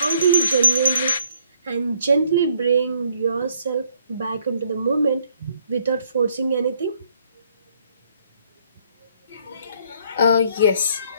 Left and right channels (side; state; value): both; inverted; correlation -0.66